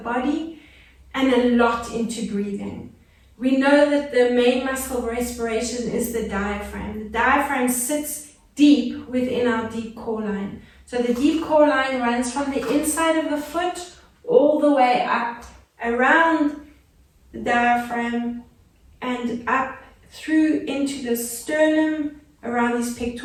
and a lot into breathing. We know that the main muscle of respiration is the diaphragm. The diaphragm sits deep within our deep core line. So the deep core line runs from the inside of the foot all the way up around the diaphragm and up through into the sternum, around these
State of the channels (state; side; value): identical; both; correlation 1.00